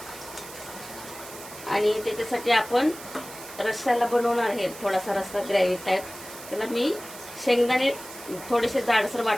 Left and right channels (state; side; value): noise; right; hiss, 15 dB below the sound